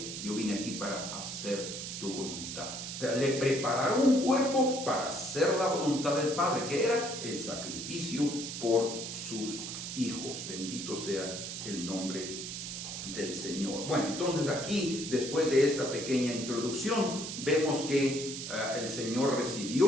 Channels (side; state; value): right; noise; hiss, 6 dB below the sound